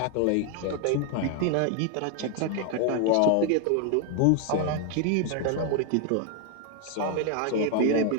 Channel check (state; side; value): different; both; correlation 0.00